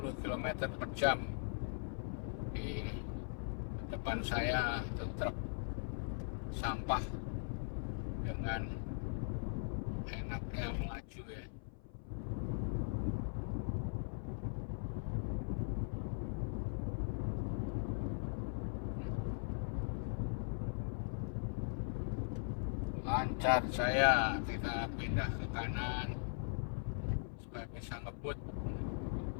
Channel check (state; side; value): silent; right; 51 dB below the other